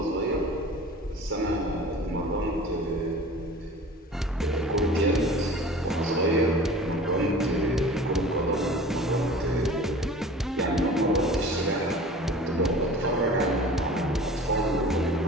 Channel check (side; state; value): both; normal; correlation 0.41